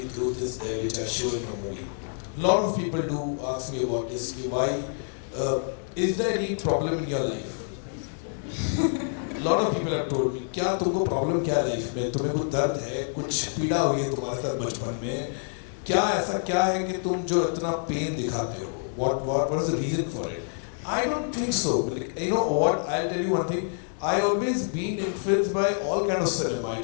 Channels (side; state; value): right; silent; digital silence